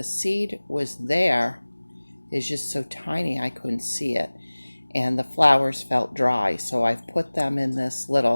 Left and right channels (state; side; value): inverted; both; correlation -1.00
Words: seed was there. It's just so tiny I couldn't see it, and the flowers felt dry. So I've put them in this